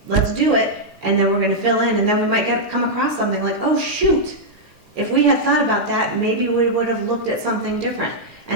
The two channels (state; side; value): normal; both; correlation -0.06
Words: let's do it, and then we're gonna fill in, and then we might come across something like, oh shoot, if we had thought about that, maybe we would have looked at something different.